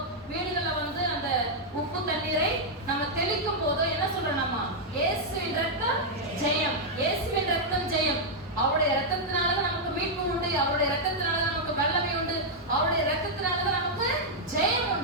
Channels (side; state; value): both; normal; correlation -0.04